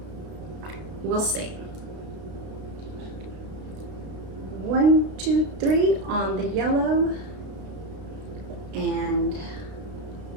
We'll see. 1, 2, 3 on the yellow, and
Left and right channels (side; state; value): left; late; 32 ms